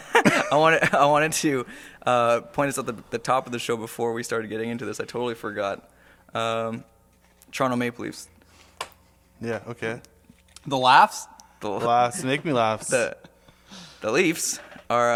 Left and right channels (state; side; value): identical; both; correlation 1.00